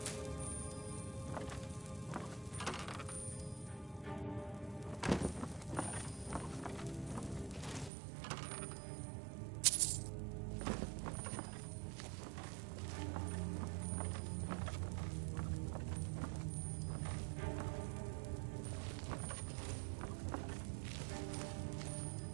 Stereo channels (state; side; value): drops out; left; at 7.9 s